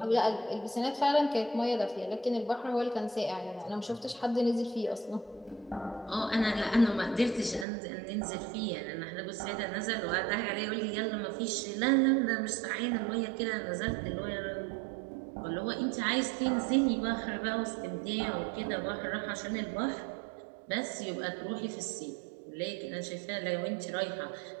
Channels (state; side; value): drops out; left; at 7.7 s